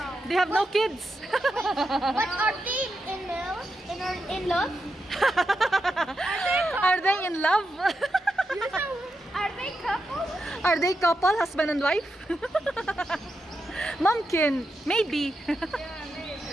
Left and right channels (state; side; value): normal; both; correlation 0.86